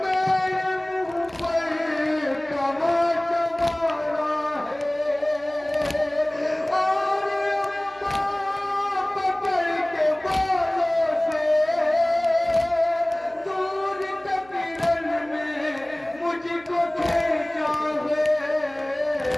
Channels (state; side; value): noise; right; hum, 26 dB below the sound